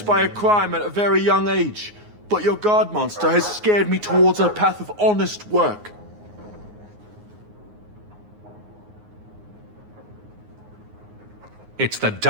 by a crime at a very young age, but your guard monster has scared me towards a path of honest work. It's the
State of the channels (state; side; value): late; left; 9.6 ms